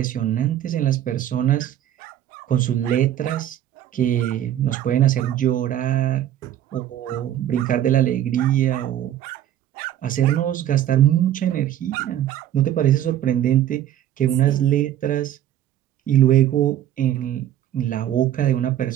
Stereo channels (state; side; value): quieter; left; 11.6 dB